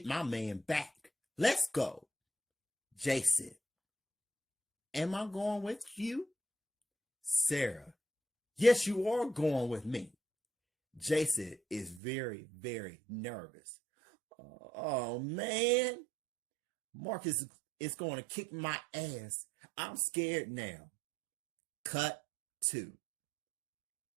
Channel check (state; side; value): drops out; left; at 12.0 s